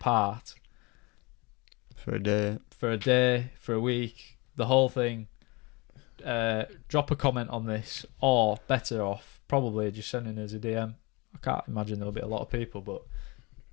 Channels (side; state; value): right; quieter; 26.5 dB